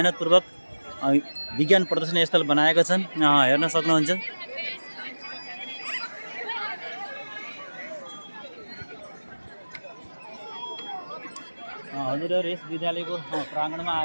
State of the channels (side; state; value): both; inverted; correlation -1.00